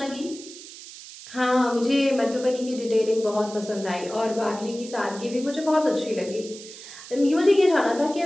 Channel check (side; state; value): right; noise; hiss, 15 dB below the sound